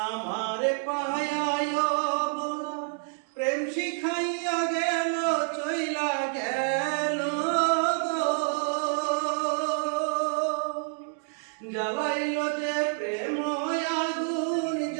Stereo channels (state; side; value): silent; left; 58 dB below the other